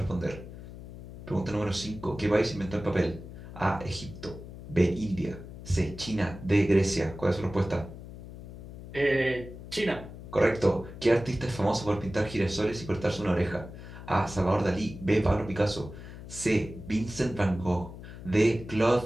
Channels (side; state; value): left; noise; hum, 13 dB below the sound